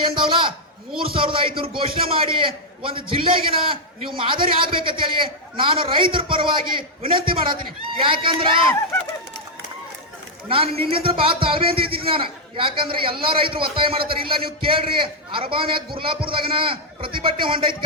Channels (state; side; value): normal; both; correlation -0.04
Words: ಏನ್ದಾವಲ್ಲ 3500 ಘೋಷಣೆ ಮಾಡಿ ಒಂದು ಜಿಲ್ಲೆಗಿನ ನೀವು ಮಾದರಿ ಆಗ್ಬೇಕಂತ ಹೇಳಿ ನಾನು ರೈತರ ಪರವಾಗಿ ವಿನಂತಿ ಮಾಡತ್ತೀನಿ. ಯಾಕಂದ್ರ ನಾನು ನಿನ್ನಿಂದ ಬಹಳ ತಾಳ್ಮೆ ಅಂತ ಇದ್ದೀನಿ ನಾನು. ಯಾಕಂದ್ರೆ ಎಲ್ಲಾ ರೈತರು ಒತ್ತಾಯ ಮಾಡತ್ತಾರ. ಇಲ್ಲ ನೀವು ಕೇಳ್ರಿ, ಅರಬಾನ್ಯಾಗ ಗುರ್ಲಾಪುರದಾಗನ ಪ್ರತಿಭಟನೆ ಹೊಂಡೈತಿ